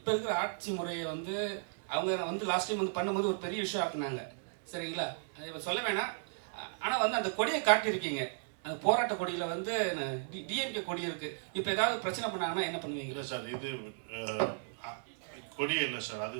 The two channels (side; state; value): left; silent; digital silence